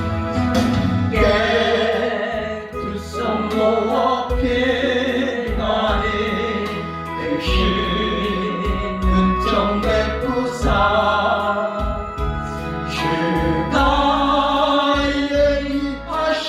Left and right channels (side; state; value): both; identical; correlation 1.00